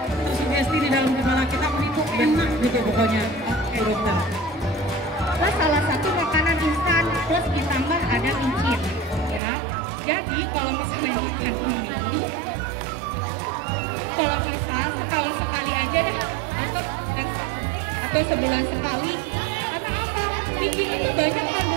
di dalam kepala kita, mie itu enak gitu pokoknya. Oke dokter. Plus salah satu makanan instan plus ditambah ada micin ya. Jadi kalau misalnya makan mie, kalau bisa setahun sekali aja deh atau sebulan sekali. Karena apa? Micin itu banyak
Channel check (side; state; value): left; drops out; at 9.4 s